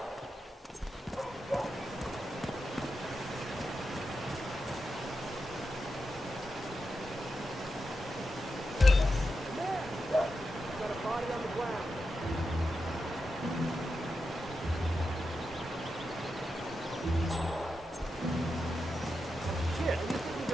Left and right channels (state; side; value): normal; both; correlation 0.88